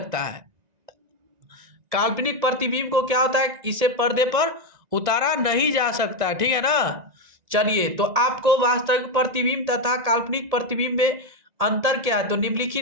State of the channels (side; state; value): left; late; 1.9 ms